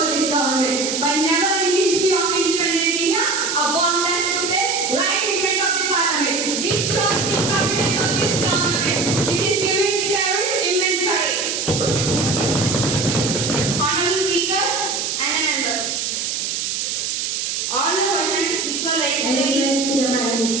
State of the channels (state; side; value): noise; right; hiss, 2 dB below the sound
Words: this government, but never in the history of independent India a bomb has took place right in front of the parliament. This shows the competence of this government. It is giving the terrorists immense courage. Honorable Speaker and the members, all the questions which were raised I request to the Prime